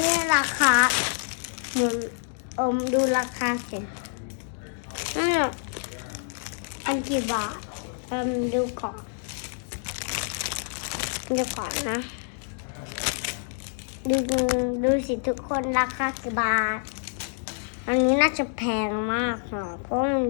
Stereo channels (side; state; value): right; silent; 60 dB below the other